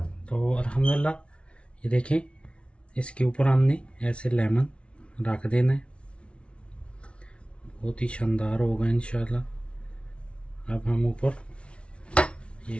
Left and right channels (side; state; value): right; late; 0.059 ms